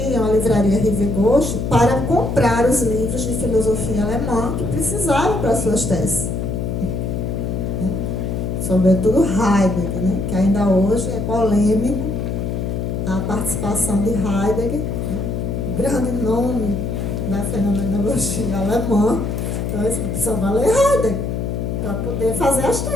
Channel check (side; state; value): left; noise; hum, 2 dB below the sound